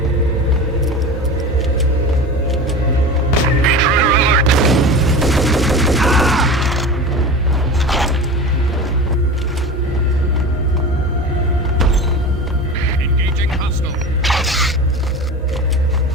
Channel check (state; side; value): normal; both; correlation 0.31